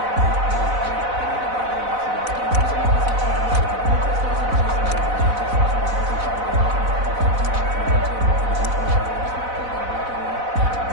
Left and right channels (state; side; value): late; left; 4.0 ms